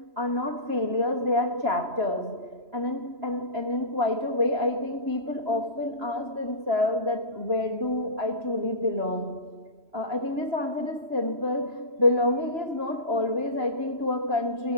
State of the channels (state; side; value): late; left; 3.0 ms